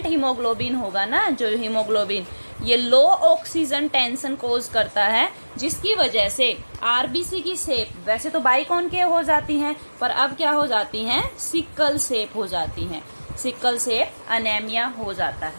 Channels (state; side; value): inverted; both; correlation -1.00